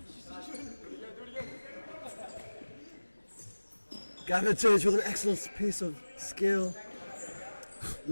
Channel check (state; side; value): inverted; both; correlation -1.00